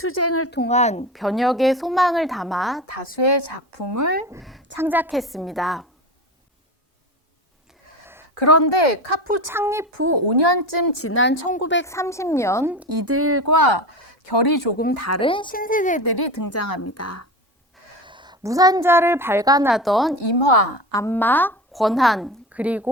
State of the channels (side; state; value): both; normal; correlation 0.26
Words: 통한 변혁의 소망을 담아 다수의 작품을 창작했습니다. 그런데 카푸 창립 후 5년쯤 지난 1930년 이들과 결이 조금 다른 신세대들이 등장합니다. 무산자를 발간하던 임화, 안마, 권한,